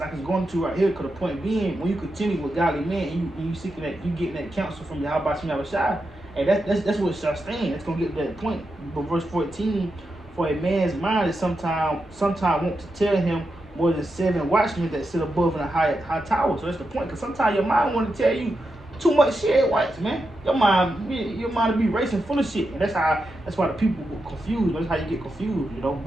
going to right here. Because the point being, when you continue with godly men, and you seeking that, you getting that counsel from Yahweh Shai, and that's what shall stand. It's gonna get to that point. But verse 14, "For a man's mind is sometime want to tell him more than 7 watchmen that sit above in a high tower." So that's the point. Because sometimes your mind want to tell you too much shit at once, man. Your mind will be racing full of shit, and that's why the people get confused. That's how you get confused, you know,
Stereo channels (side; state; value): both; normal; correlation 0.87